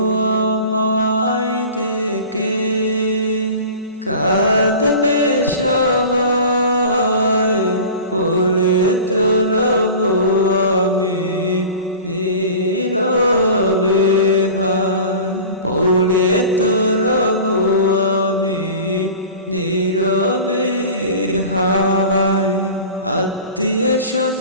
আমায় দেখে কাঁদবে সবাই পড়ে তো রব আমি নীরবে হায় পড়ে তো রব আমি নীরবে হায় আত্মীয়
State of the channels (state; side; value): inverted; both; correlation -0.38